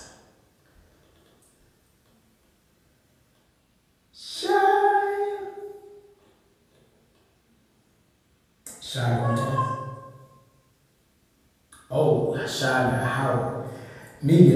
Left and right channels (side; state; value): both; identical; correlation 1.00